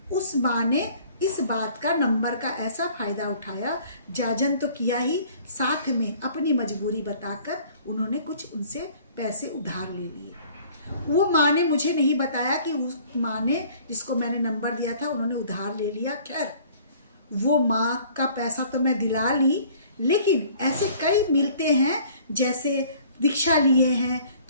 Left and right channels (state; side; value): inverted; both; correlation -0.53